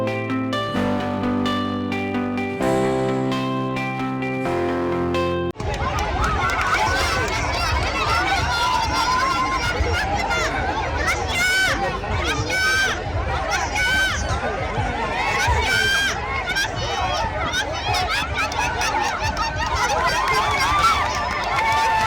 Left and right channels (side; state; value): both; identical; correlation 1.00